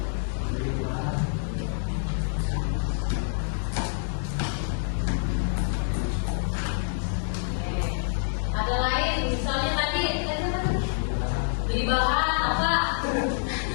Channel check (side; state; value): right; silent; digital silence